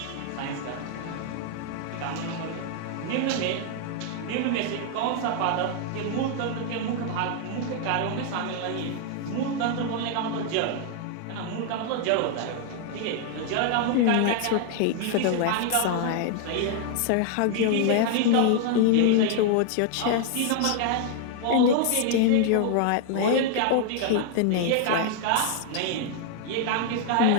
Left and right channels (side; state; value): both; different; correlation 0.00